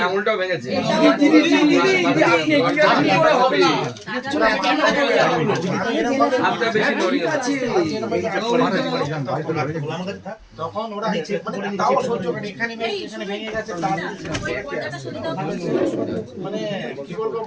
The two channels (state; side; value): identical; both; correlation 1.00